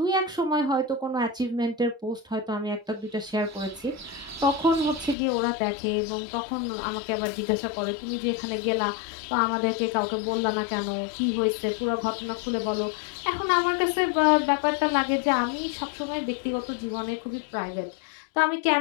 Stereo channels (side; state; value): right; drops out; at 5.2 s